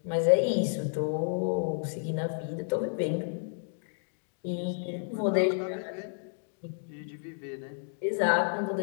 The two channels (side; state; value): right; silent; digital silence